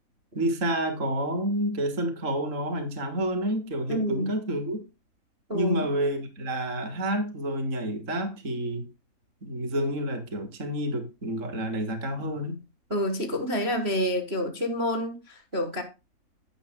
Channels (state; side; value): late; left; 3.0 ms